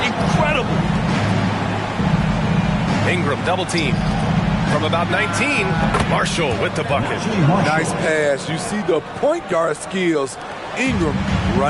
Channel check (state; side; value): identical; both; correlation 1.00